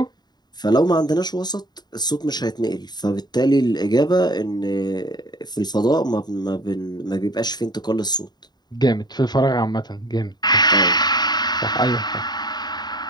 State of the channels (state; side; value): late; right; 0.20 ms